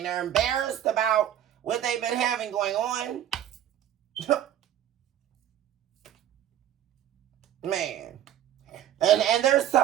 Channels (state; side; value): quieter; left; 11.2 dB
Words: They're embarrassed about what they've been having going on. Man. And they're